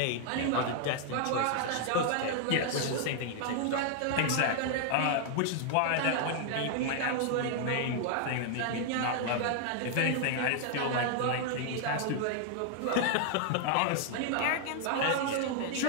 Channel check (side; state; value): both; different; correlation 0.00